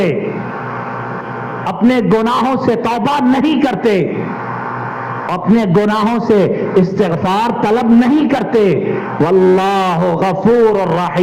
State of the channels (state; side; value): identical; both; correlation 1.00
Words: اپنے گناہوں سے توبہ نہیں کرتے، اپنے گناہوں سے استغفار طلب نہیں کرتے۔ واللہ غفور